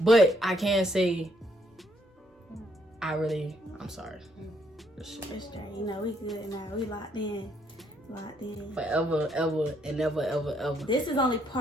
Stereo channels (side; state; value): both; normal; correlation 0.71